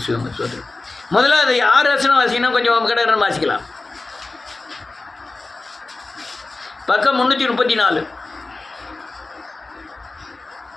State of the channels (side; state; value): right; quieter; 3.4 dB